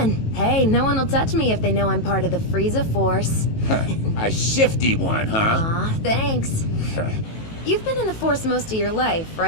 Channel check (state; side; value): late; right; 18 ms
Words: Hey, no one will touch me if they know I'm part of the Frieza Force. A shifty one, huh? Aw, thanks. You've been in the Force most of your life,